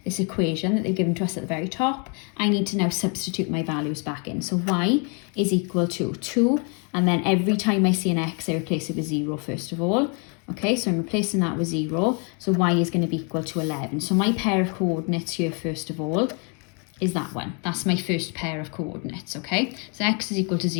this equation that they've given to us at the very top, I need to now substitute my values back in. So y is equal to 2, and then every time I see an x, I replace it with 0 first of all. Okay, so I'm replacing that with 0. So y is going to be equal to 11. So my pair of coordinates here, first of all, is that one. That's my first pair of coordinates, okay? So x is equal to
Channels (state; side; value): quieter; right; 36.4 dB